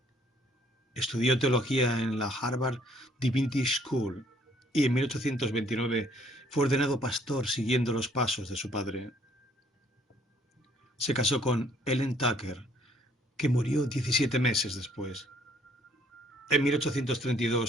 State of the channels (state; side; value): normal; both; correlation 0.63